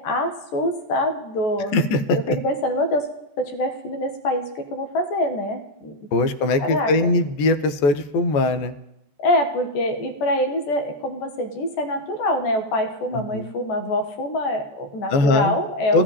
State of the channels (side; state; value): right; late; 14 ms